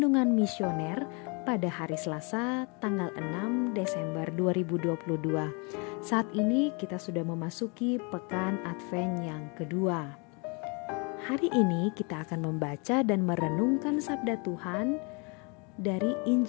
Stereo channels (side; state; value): right; quieter; 32.5 dB